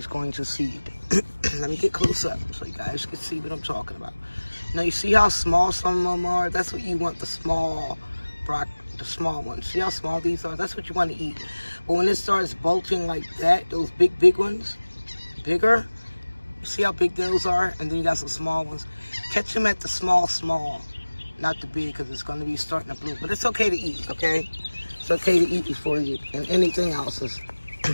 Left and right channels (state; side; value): inverted; both; correlation -1.00